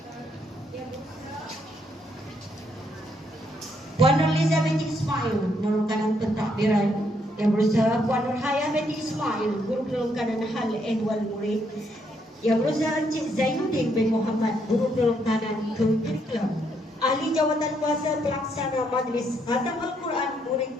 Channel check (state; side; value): normal; both; correlation 0.74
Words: Puan Nurliza binti Ismail, guru kanan pentadbiran. Yang berusaha Puan Nurhaya binti Ismail, guru kanan hal ehwal murid. Yang berusaha Encik Zainuddin bin Muhammad, guru kanan curriculum. Ahli jawatan kuasa pelaksana majlis khatam Al-Quran